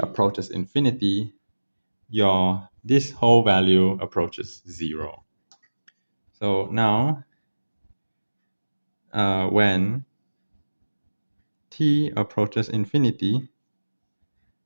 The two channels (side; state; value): both; inverted; correlation -1.00